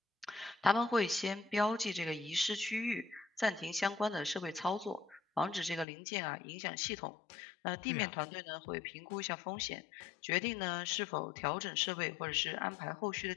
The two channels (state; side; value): drops out; right; at 5.9 s